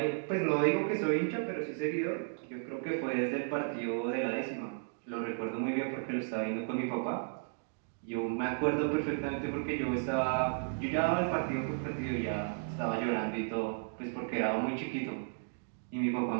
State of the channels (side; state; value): left; silent; digital silence